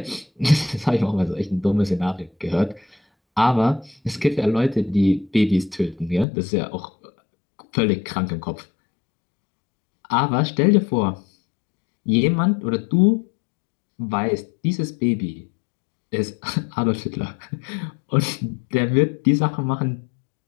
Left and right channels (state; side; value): drops out; right; at 6.2 s